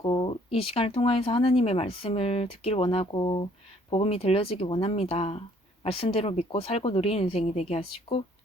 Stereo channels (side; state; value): both; normal; correlation 0.62